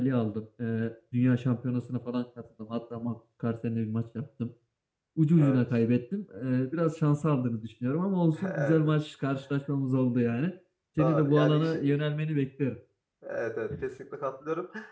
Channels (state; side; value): identical; both; correlation 1.00